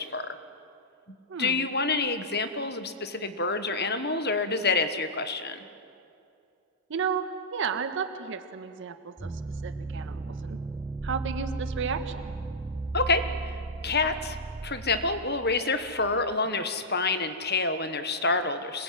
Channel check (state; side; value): normal; both; correlation -0.11